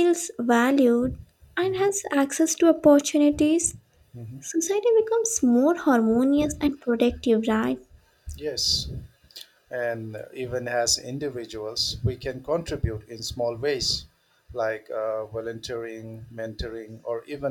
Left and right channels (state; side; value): identical; both; correlation 1.00